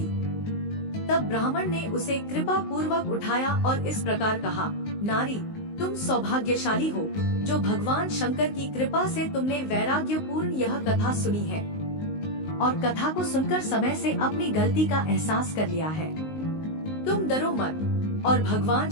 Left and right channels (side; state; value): right; late; 19 ms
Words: तब ब्राह्मण ने उसे कृपा पूर्वक उठाया और इस प्रकार कहा, नारी, तुम सौभाग्यशाली हो जो भगवान शंकर की कृपा से तुमने वैराग्यपूर्ण यह कथा सुनी है और कथा को सुनकर समय से अपनी गलती का एहसास कर लिया है। तुम डरो मत और भगवान